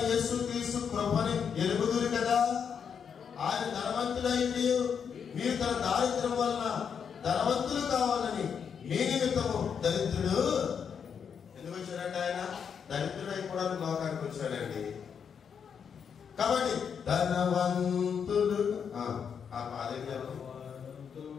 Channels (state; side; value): quieter; right; 7.1 dB